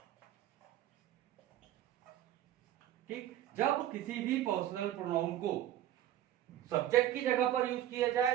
ठीक, जब किसी भी पर्सनल प्रोनाउन को सब्जेक्ट की जगह पर यूज किया जाए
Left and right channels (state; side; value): quieter; left; 12.4 dB